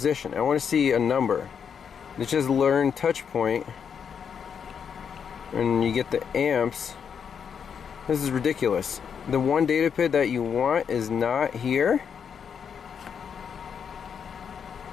I want to see a number. It's just learn touch point. And you get the amps. This is ridiculous. The one data PID that you want is not here.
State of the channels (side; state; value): right; quieter; 7.2 dB